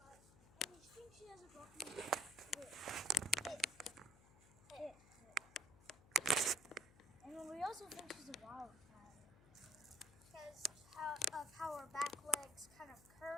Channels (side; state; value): left; noise; hum, 23 dB below the sound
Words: bite. And you think she has a broken hip. And then we also think she's a wild cat. Because of how her back legs kind of